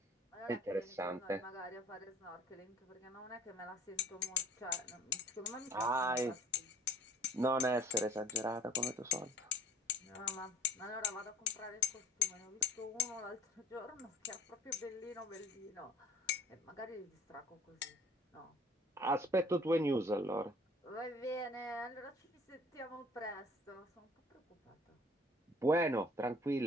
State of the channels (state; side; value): normal; both; correlation 0.49